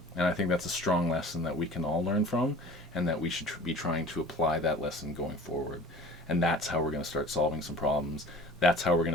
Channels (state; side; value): normal; both; correlation 0.44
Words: And I think that's a strong lesson that we can all learn from, and that we should be trying to apply that lesson going forward. And that's how we're going to start solving some problems. That's how we're